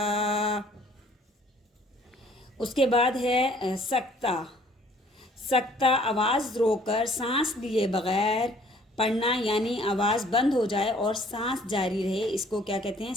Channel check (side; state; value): both; normal; correlation 0.57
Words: اس کے بعد ہے سکتہ. سکتہ آواز روک کر سانس لیے بغیر پڑھنا، یعنی آواز بند ہو جائے اور سانس جاری رہے، اس کو کیا کہتے ہیں؟